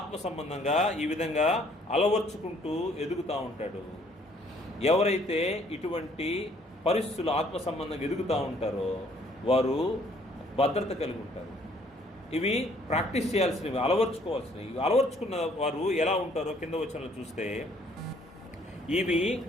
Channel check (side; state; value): both; normal; correlation 0.62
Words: సంబంధంగా ఈ విధంగా అలవర్చుకుంటూ ఎదుగుతూ ఉంటాడు. ఎవరైతే ఇటువంటి పరిస్థితులు ఆత్మ సంబంధంగా ఎదుగుతూ ఉంటారో వారు భద్రత కలిగి ఉంటారు. ఇవి ప్రాక్టీస్ చేయాల్సినవి, అలవర్చుకోవాల్సినవి. ఇవి అలవర్చుకున్న వారు ఎలా ఉంటారో కింద వచనంలో చూస్తే, ఇవి